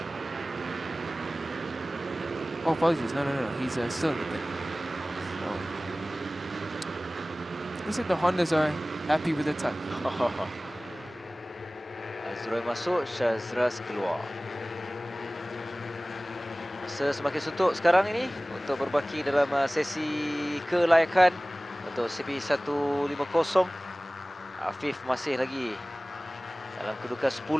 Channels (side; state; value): both; normal; correlation 0.98